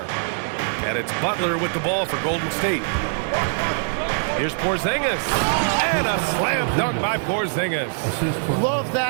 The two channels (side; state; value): left; silent; digital silence